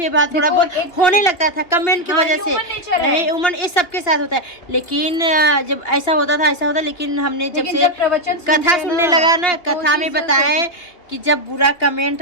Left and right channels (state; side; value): late; right; 2.6 ms